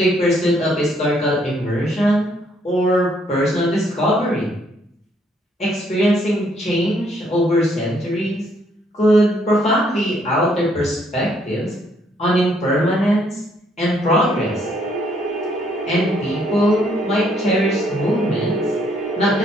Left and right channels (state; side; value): normal; both; correlation 0.68